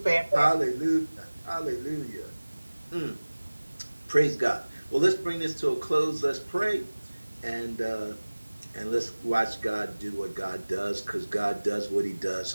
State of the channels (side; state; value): both; inverted; correlation -1.00